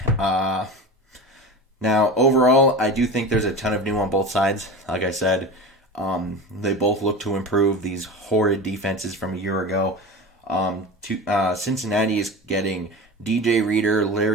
Now, overall, I do think there's a ton of new on both sides. Like I said, they both look to improve these horrid defenses from a year ago. Cincinnati is getting DJ Reader,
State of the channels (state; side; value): normal; both; correlation 0.30